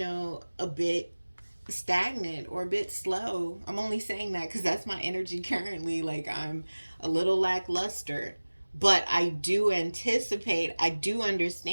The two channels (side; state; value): both; inverted; correlation -1.00